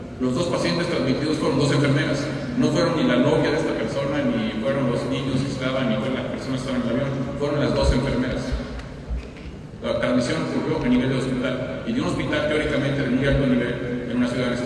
Los dos pacientes transmitidos fueron dos enfermeras. No fueron ni la novia de esta persona, ni fueron los niños que estaban, ni fueron las personas que estaban en el avión. Fueron las dos enfermeras. La transmisión ocurrió a nivel de hospital, y de un hospital teóricamente de muy alto nivel en una ciudad de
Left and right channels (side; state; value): both; identical; correlation 1.00